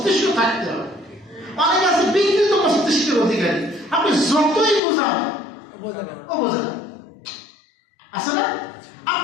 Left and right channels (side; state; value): right; drops out; at 4.8 s